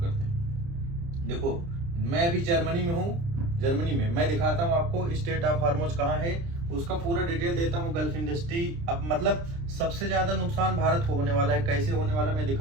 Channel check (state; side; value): late; left; 29 ms